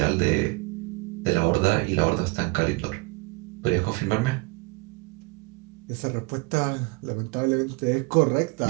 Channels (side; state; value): left; quieter; 26.4 dB